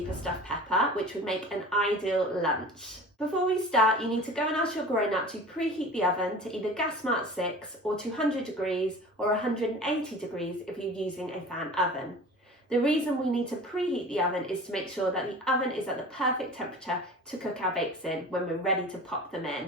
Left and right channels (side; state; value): both; normal; correlation 0.39